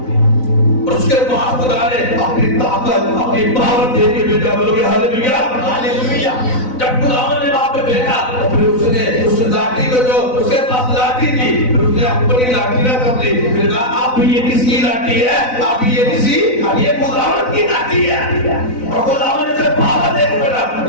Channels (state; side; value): late; right; 4.0 ms